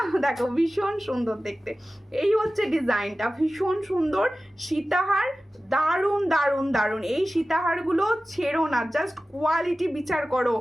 দেখো ভীষণ সুন্দর দেখতে, এই হচ্ছে ডিজাইনটা, ভীষণ সুন্দর সীতাহার, দারুণ দারুণ দারুণ। এই সীতাহারগুলো ছেড়ো না, জাস্ট কোয়ালিটি বিচার করো।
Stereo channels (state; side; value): normal; both; correlation 0.95